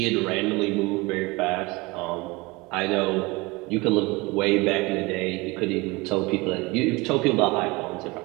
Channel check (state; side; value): quieter; left; 23.9 dB